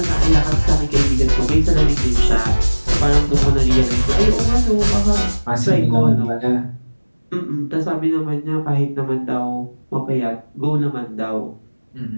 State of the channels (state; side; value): inverted; both; correlation -1.00